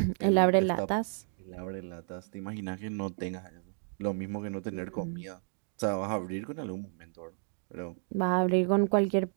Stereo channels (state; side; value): silent; left; 57 dB below the other